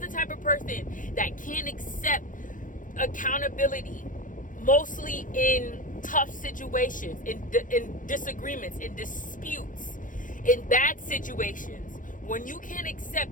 type of person that can't accept accountability, mostly in tough situations, in disagreements, in disputes, in bad situations, when you can't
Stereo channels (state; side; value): late; right; 0.38 ms